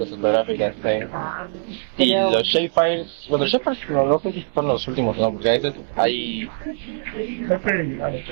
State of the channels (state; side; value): silent; left; digital silence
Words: ortográficas. Y los shapefiles, bueno, los shapefiles no sé si son los últimos, ¿no? Porque a veces hay...